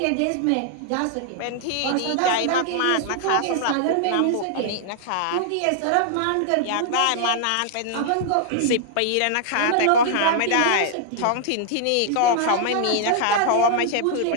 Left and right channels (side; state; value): both; different; correlation -0.01